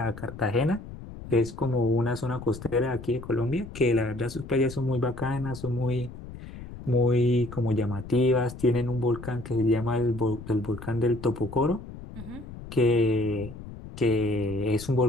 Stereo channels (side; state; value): left; noise; rumble, 13 dB below the sound